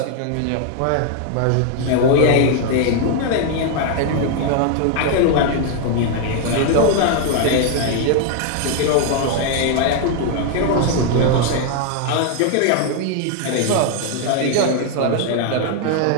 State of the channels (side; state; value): both; different; correlation 0.00